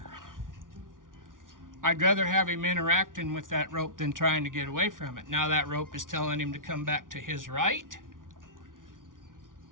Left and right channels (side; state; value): left; late; 0.88 ms